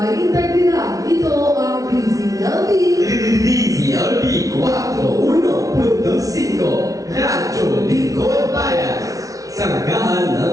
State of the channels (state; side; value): late; left; 0.17 ms